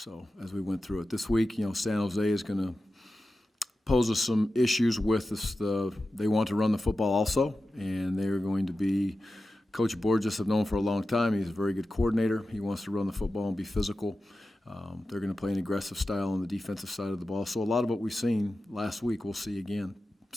as we went through it this week, San Jose is going to pose us some issues with this. They want to run the football also, and they are going to be – Coach Borges have known for a long time. He's a very good coordinator. He wants to run the football and be physical. They're going to play an aggressive style on the defensive side of the ball. So a lot of what we've seen last week we'll see again.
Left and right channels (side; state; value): both; normal; correlation 0.93